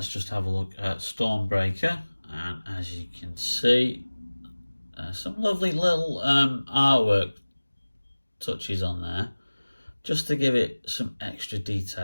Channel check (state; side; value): inverted; both; correlation -1.00